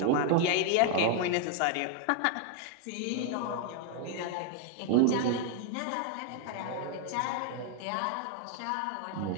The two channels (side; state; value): both; different; correlation 0.00